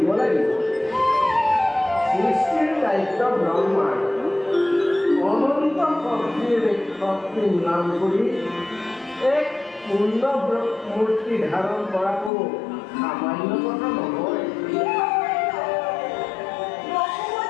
লাগিব। সৃষ্টিৰ দায়িত্ব ব্ৰহ্মাৰ অনন্ত শক্তি নাম কৰি এক পূৰ্ণ মূৰ্তি ধাৰণ কৰাটো সামান্য কথা নহয়।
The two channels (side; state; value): right; drops out; at 12.3 s